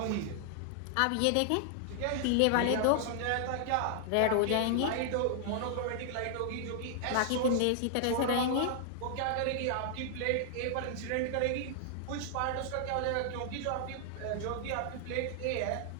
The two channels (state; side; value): different; both; correlation 0.00